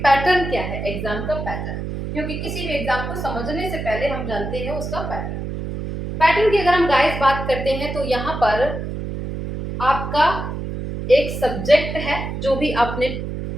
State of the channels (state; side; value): noise; right; hum, 5 dB below the sound